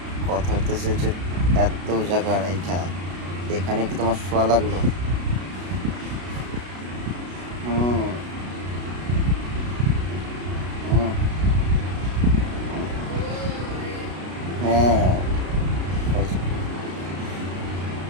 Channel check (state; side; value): late; left; 33 ms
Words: কথা হইতেছে যে এত জায়গা রাইখা এখানে কি তোমার শোয়া লাগলো? হুম হুম, হ্যাঁ খাইছো।